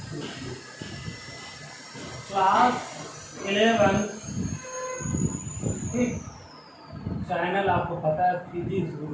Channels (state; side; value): identical; both; correlation 1.00